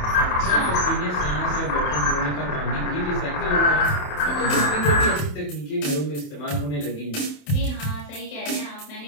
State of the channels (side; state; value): right; late; 27 ms